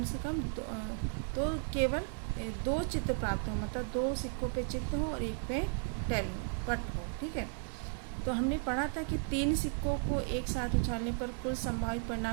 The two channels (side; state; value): left; silent; 54 dB below the other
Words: से कम तो केवल 2 चित्त प्राप्त हो, मतलब 2 सिक्कों पे चित्त हो और एक पे टेल हो, पट हो, ठीक है। तो हमने पढ़ा था कि 3 सिक्कों को एक साथ उछालने पर कुल संभावित